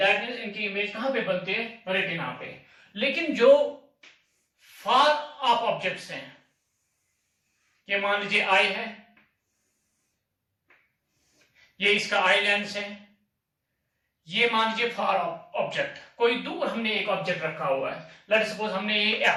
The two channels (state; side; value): identical; both; correlation 1.00